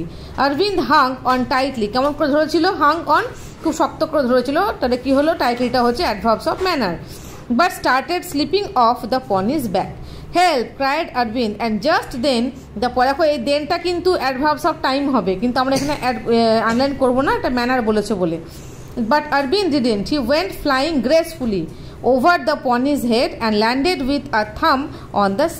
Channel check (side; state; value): both; identical; correlation 1.00